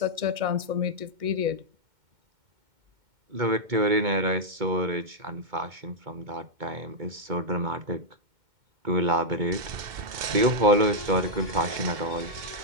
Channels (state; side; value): late; left; 2.1 ms